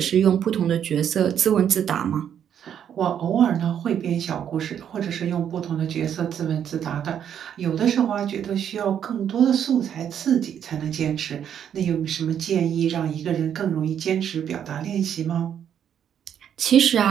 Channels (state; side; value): quieter; left; 9.1 dB